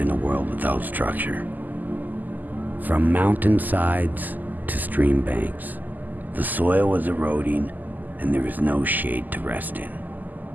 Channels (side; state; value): left; late; 0.084 ms